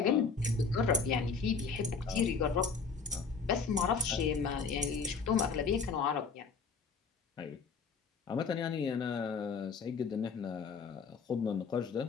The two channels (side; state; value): right; quieter; 5.2 dB